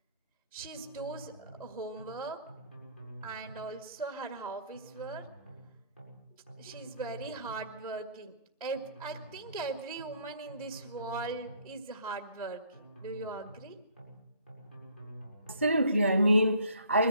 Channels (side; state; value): both; inverted; correlation -0.60